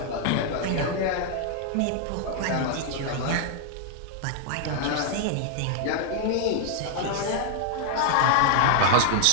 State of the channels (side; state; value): both; different; correlation 0.00